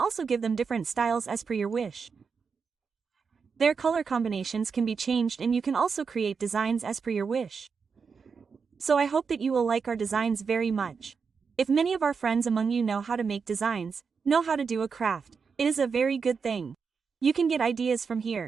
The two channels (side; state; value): left; quieter; 5.6 dB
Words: give them different styles as per your wish. Their color combinations can be changed and you can also create designs as per your wish. So I hope that you will like our designs very much. If many of our friends among you know how to make designs, know how to do a craft, it is a very good thing. You can get ideas from